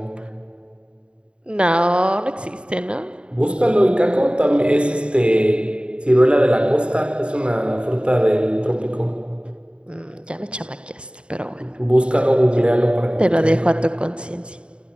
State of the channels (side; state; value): left; late; 0.054 ms